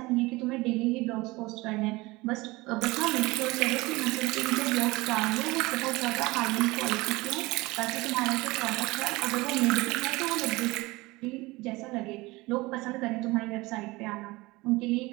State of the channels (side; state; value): left; quieter; 21.9 dB